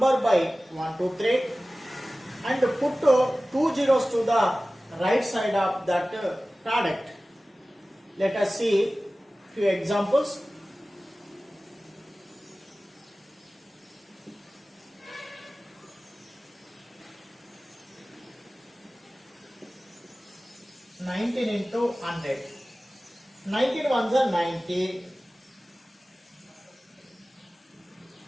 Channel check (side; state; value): both; normal; correlation 0.97